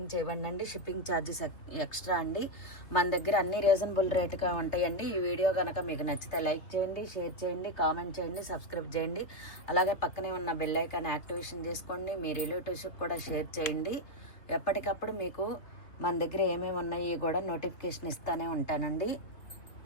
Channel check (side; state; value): right; late; 3.0 ms